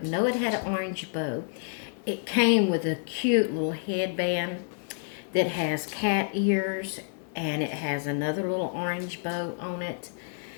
know it had an orange bow. It came with a cute little headband that has cat ears, and it has another little orange bow on it,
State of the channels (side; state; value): right; silent; 59 dB below the other